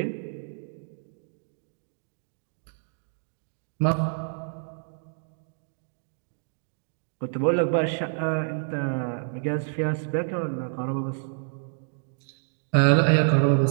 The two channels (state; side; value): silent; left; digital silence